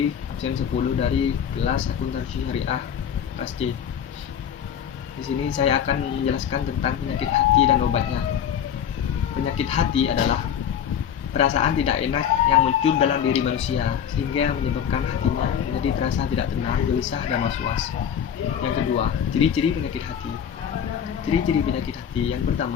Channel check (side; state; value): right; quieter; 8.7 dB